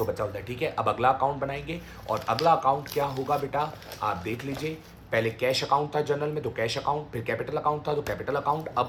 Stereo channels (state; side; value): identical; both; correlation 1.00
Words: बचा होता है, ठीक है। अब अगला अकाउंट बनाएंगे और अगला अकाउंट क्या होगा बेटा, आप देख लीजिए। पहले कैश अकाउंट था जनरल में, तो कैश अकाउंट, फिर कैपिटल अकाउंट था तो कैपिटल अकाउंट, अब